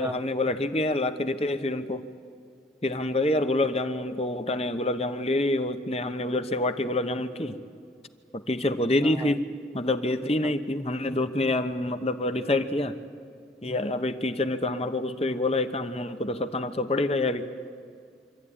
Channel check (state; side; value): normal; both; correlation 0.53